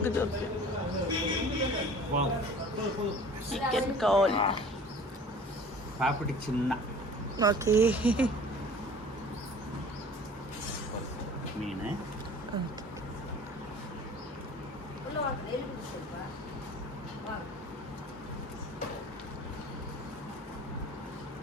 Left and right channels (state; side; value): normal; both; correlation 0.45